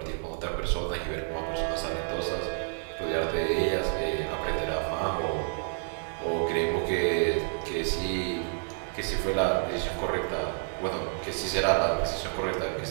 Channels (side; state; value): left; silent; 58 dB below the other